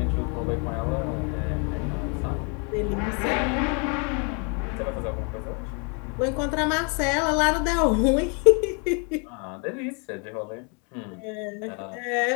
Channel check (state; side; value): quieter; right; 36.2 dB